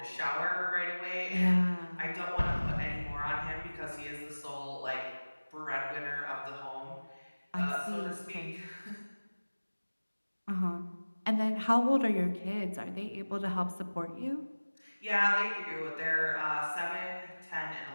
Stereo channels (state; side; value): inverted; both; correlation -1.00